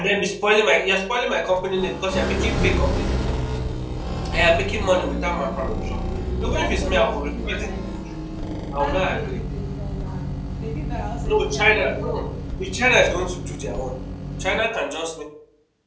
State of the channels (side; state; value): both; identical; correlation 1.00